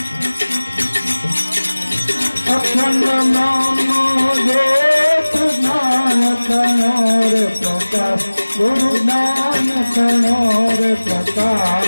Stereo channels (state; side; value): inverted; both; correlation -1.00